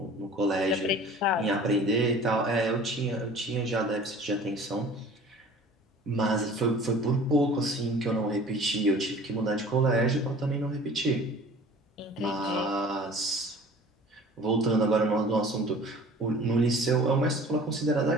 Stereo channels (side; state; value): both; normal; correlation 0.46